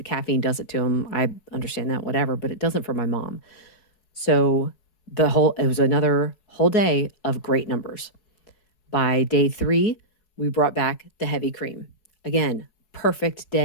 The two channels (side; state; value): right; late; 4.7 ms